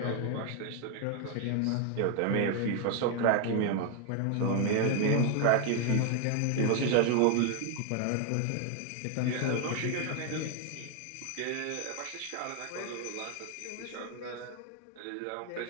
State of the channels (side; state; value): both; different; correlation 0.01